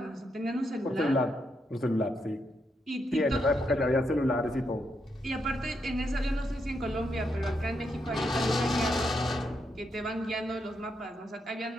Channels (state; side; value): normal; both; correlation 0.81